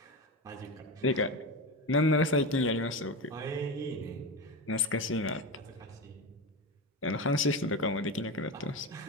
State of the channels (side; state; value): both; normal; correlation 0.21